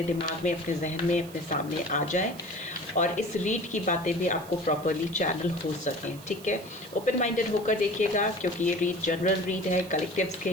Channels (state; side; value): noise; right; hiss, 19 dB below the sound